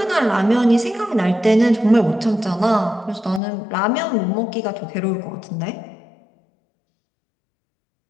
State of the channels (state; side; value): drops out; right; at 3.4 s